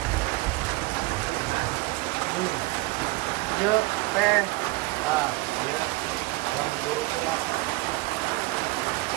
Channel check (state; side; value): quieter; left; 22.0 dB